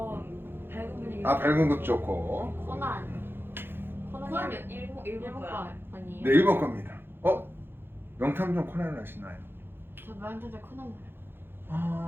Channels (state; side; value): late; left; 0.10 ms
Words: 밝은 분위기. 밝은 것도 좋고. 코난. 코난 일본 거야. 거 아니에요? 네, 일본 겁니다. 명탐정 코난을 아시나요? 저 명탐정 코난